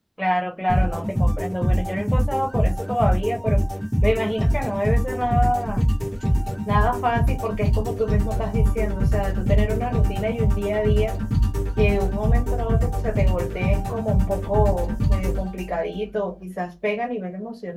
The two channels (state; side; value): identical; both; correlation 1.00